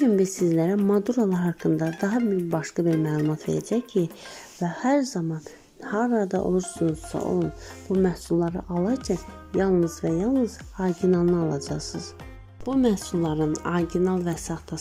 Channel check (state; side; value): identical; both; correlation 1.00